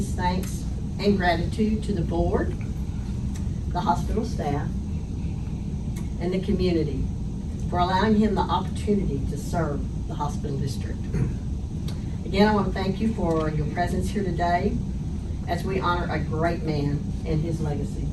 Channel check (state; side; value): identical; both; correlation 1.00